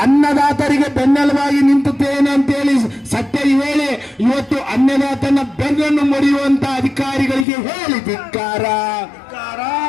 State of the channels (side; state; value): right; drops out; at 7.5 s